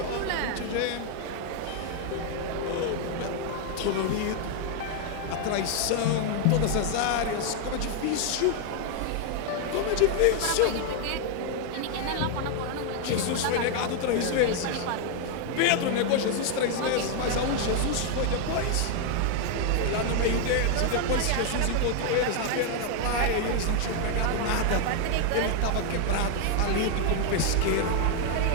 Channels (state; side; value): different; both; correlation 0.00